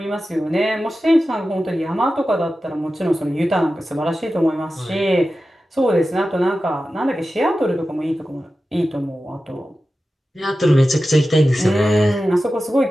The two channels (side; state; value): both; normal; correlation 0.93